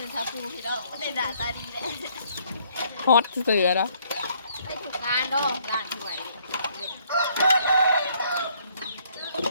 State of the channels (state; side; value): inverted; both; correlation -0.66